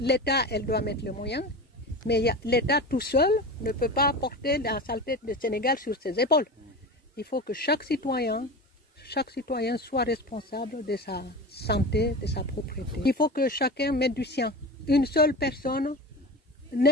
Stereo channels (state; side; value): normal; both; correlation 0.29